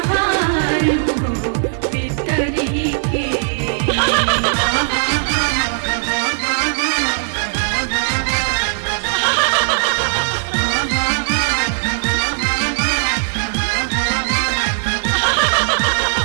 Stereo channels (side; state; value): left; silent; digital silence